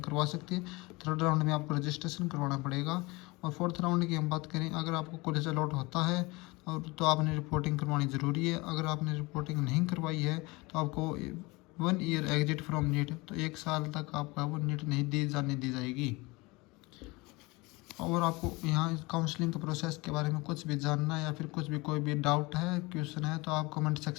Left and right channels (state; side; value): quieter; right; 24.0 dB